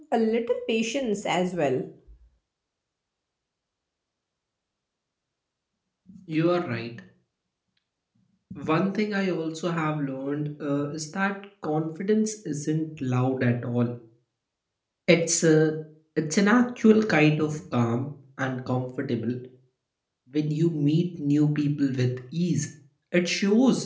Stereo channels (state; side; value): identical; both; correlation 1.00